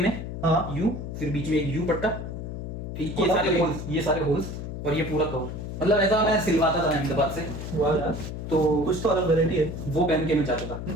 हाँ। यू, फिर बीच में एक यू पट्टा, ठीक, ये और सारे ये- होल्स, ये सारे होल्स, और ये पूरा कवर। मतलब ऐसा मैं सिलवाता था अहमदाबाद से। वाह यार, तो कुछ तो अलग वैरायटी है। वो पहन के मैं जाता था।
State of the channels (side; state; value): left; noise; hum, 7 dB below the sound